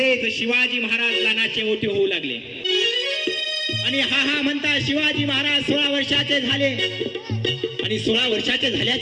शिवाजी महाराज लहानाचे मोठे होऊ लागले. आणि हा म्हणता शिवाजी महाराज 16 वर्षाचे झाले. आणि 16 वर्षाचे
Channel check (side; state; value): both; identical; correlation 1.00